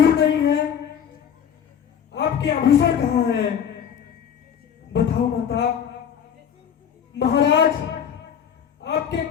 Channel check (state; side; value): quieter; right; 8.3 dB